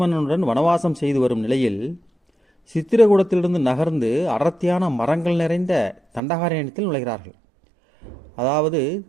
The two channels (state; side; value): drops out; left; at 6.2 s